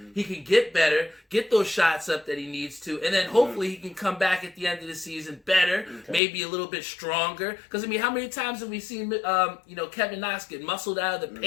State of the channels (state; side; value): drops out; right; at 6.2 s